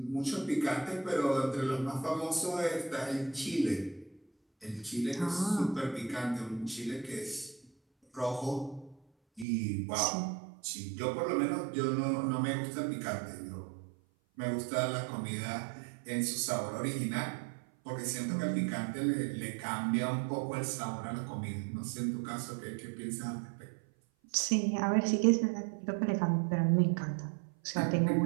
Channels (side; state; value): left; drops out; at 9.5 s